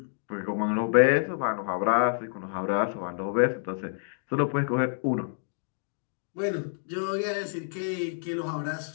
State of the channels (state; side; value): silent; right; digital silence